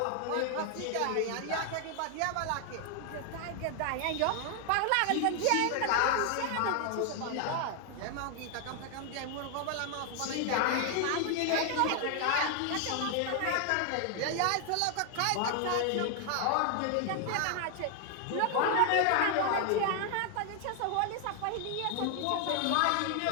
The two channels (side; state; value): both; different; correlation 0.00